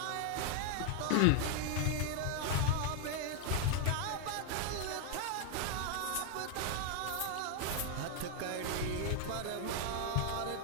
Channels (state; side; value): different; both; correlation 0.00